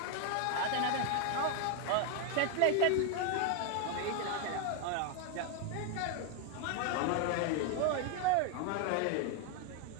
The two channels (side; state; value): both; different; correlation 0.01